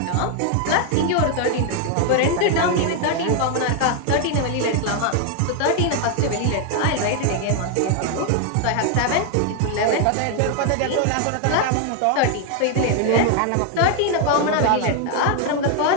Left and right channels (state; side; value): different; both; correlation 0.00